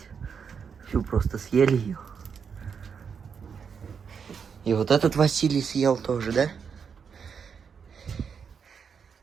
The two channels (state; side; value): quieter; left; 6.5 dB